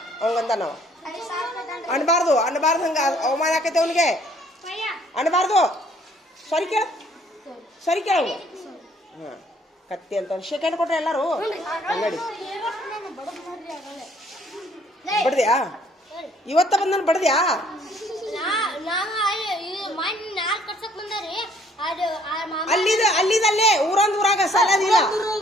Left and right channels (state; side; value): normal; both; correlation 0.61